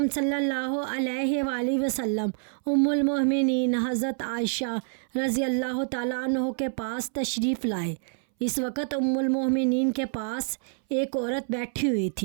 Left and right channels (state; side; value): silent; left; 60 dB below the other